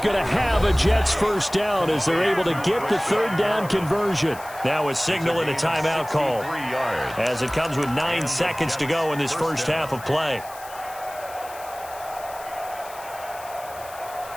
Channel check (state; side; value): noise; left; hiss, 18 dB below the sound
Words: to have a Jets first down as they're able to get the 3rd down conversion. Now a signal and a timeout call as it comes with 9 seconds to go in this first half of play.